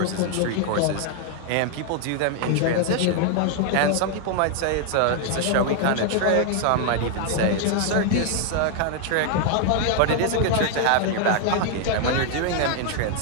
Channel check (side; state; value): both; different; correlation 0.00